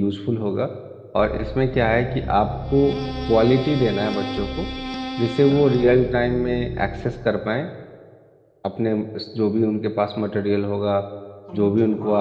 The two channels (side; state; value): both; identical; correlation 1.00